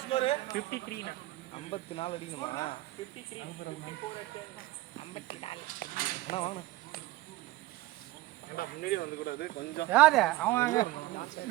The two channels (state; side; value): quieter; left; 17.8 dB